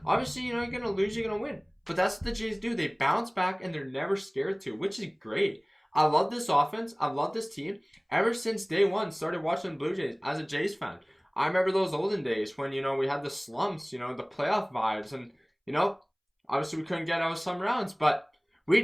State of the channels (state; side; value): identical; both; correlation 1.00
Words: Obviously, you know, you're going to lose, you're going to win. But that's what the Jays do. They bounce back and they're never scared to, which is great. I love this offense. I love this team. Ever since day one, started watching the Blue Jays as a Jays fan. I remember those olden days when, you know, we had the slumps, you know, the playoff vibes. And, you know, obviously we couldn't get out of some rounds. But we